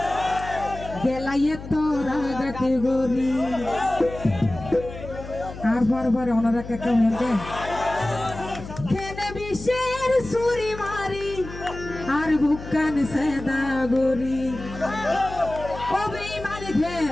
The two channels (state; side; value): noise; left; hum, 12 dB below the sound